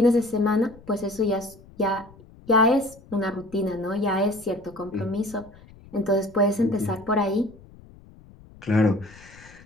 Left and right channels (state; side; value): noise; left; rumble, 22 dB below the sound